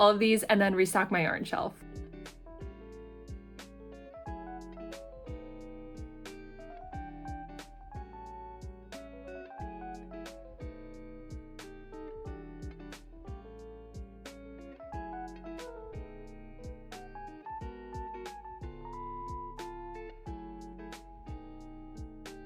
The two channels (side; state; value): both; identical; correlation 1.00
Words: of these and then restock my yarn shelf.